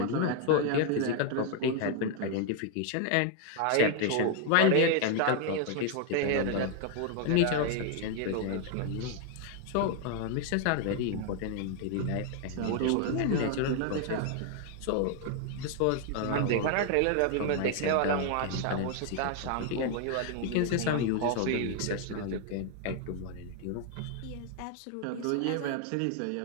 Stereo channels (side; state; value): both; different; correlation 0.00